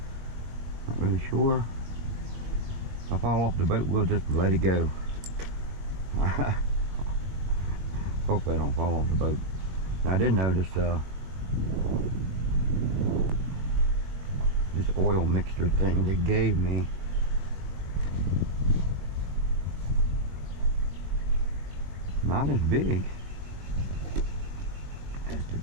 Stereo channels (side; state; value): left; late; 21 ms